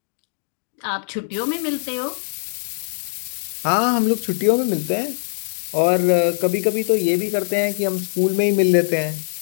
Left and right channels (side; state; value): right; silent; digital silence